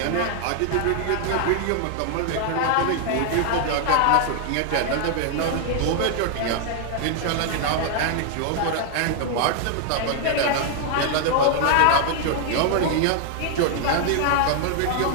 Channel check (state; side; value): different; both; correlation 0.00